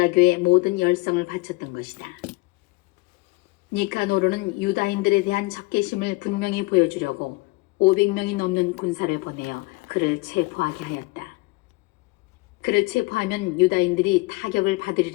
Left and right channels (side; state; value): right; quieter; 24.1 dB